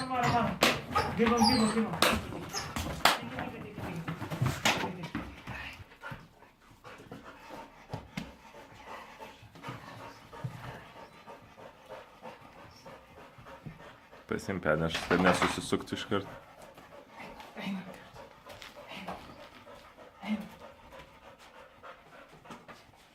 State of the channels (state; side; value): identical; both; correlation 1.00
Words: Para. Give him. Păi se impede, acho que nessa se suco tu esquerdo.